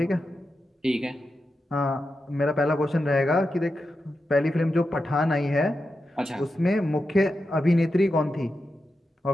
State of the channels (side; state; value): both; normal; correlation 0.89